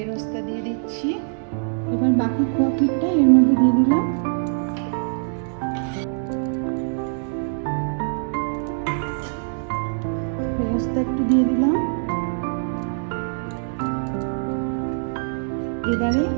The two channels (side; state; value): left; silent; digital silence